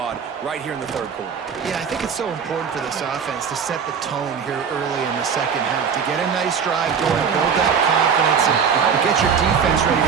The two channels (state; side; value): quieter; left; 6.7 dB